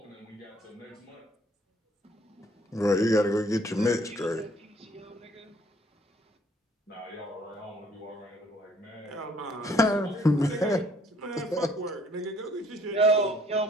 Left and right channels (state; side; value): normal; both; correlation 0.62